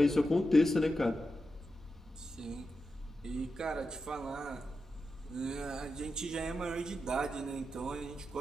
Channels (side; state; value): both; normal; correlation 0.89